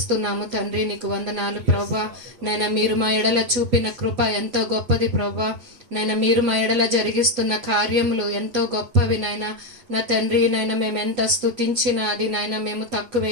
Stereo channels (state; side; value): late; left; 8.1 ms